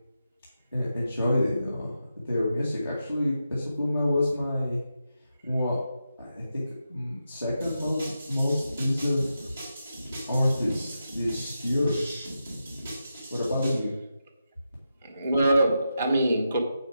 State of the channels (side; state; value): both; inverted; correlation -0.88